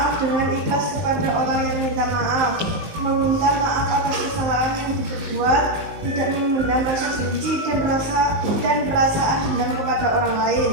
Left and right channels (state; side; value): late; left; 19 ms